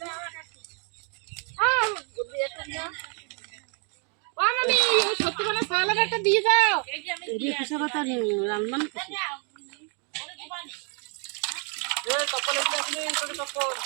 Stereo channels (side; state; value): left; quieter; 38.1 dB